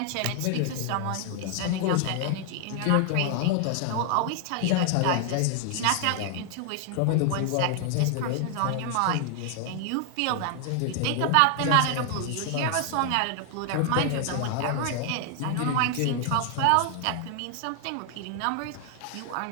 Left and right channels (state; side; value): different; both; correlation 0.00